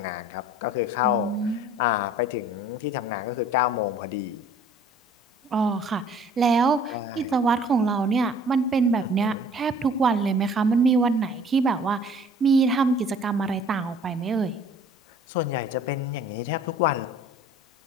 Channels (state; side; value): normal; both; correlation 0.52